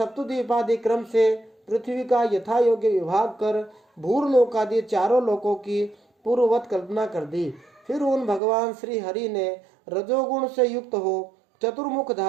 क्रम से पृथ्वी का यथा योग्य विभाग कर भूरलोक आदि चारों लोकों की पूर्ववत कल्पना कर दी। फिर उन भगवान श्री हरि ने रजोगुण से युक्त हो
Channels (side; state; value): left; drops out; at 8.4 s